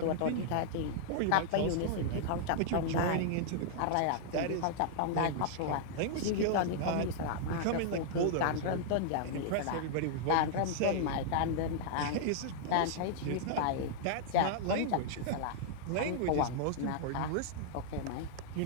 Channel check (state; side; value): different; both; correlation -0.01